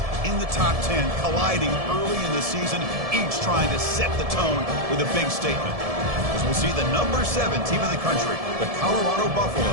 in the top 10, colliding early in the season, each trying to set the tone with a big statement. As we'll see the number 7 team in the country, the Colorado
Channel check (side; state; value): left; late; 1.7 ms